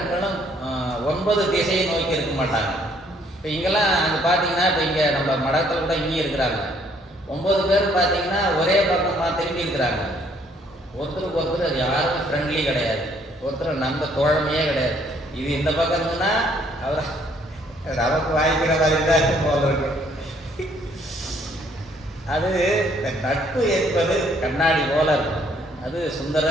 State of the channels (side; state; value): both; normal; correlation 0.65